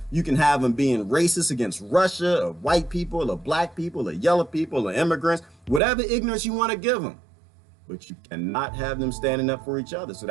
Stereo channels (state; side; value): drops out; left; at 5.8 s